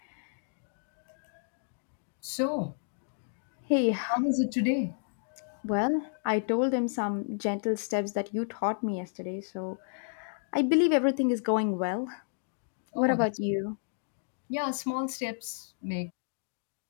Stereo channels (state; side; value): silent; right; digital silence